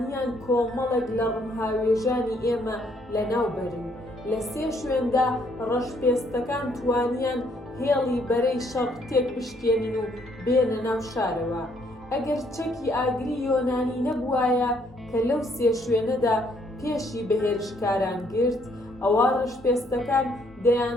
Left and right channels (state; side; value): normal; both; correlation 0.68